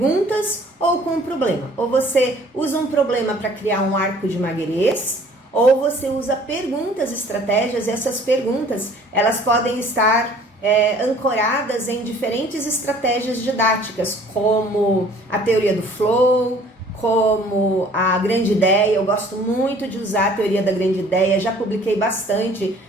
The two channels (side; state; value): both; normal; correlation 0.53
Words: ou com um problema. Ou você usa um problema para criar um arco de Maguerês, ou você usa perguntas, estratégias, e essas perguntas elas podem estar ancoradas em diferentes estratégias didáticas, como a teoria do flow, como a grande ideia. Eu gosto muito de usar a teoria da grande ideia, já publiquei bastante